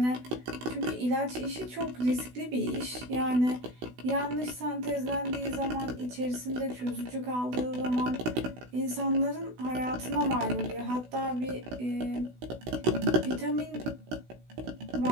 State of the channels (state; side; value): late; left; 16 ms